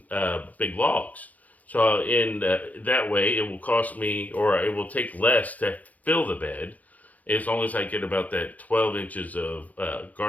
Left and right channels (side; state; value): right; late; 0.073 ms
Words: big logs. So in that way, it will cost me, or it will take less to fill the bed, as long as I get about that 12 inches of